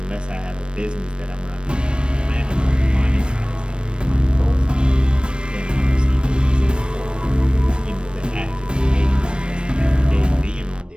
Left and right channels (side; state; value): left; late; 0.055 ms